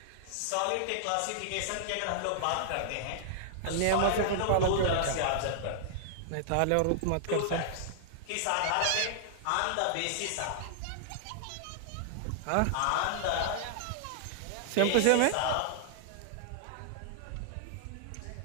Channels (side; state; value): both; different; correlation -0.01